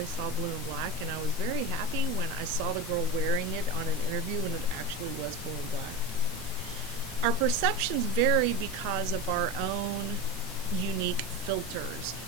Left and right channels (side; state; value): both; normal; correlation 0.22